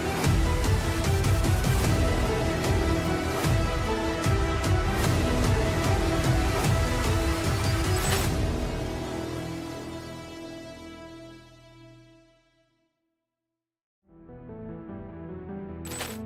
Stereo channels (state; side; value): identical; both; correlation 1.00